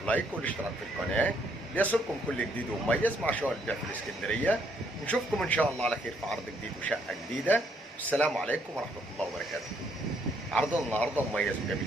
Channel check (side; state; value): both; normal; correlation 0.70